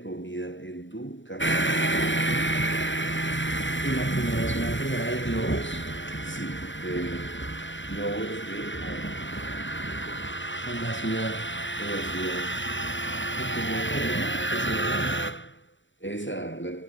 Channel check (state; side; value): late; right; 0.55 ms